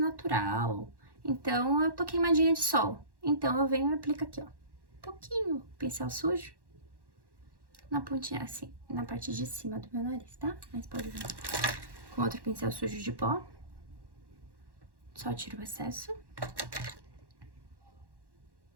Então, eu tô queimadinha de sol. Então, eu venho e aplico aqui, ó. Um pouquinho, pincel sujo. Na pontinha, assim, na parte de cima do meu nariz, tá? Mas pode vir com outro pincel sujo de pó. Só tiro o excesso.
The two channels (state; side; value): late; left; 1.1 ms